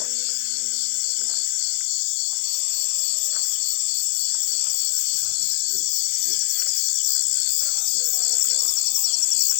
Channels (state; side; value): silent; right; digital silence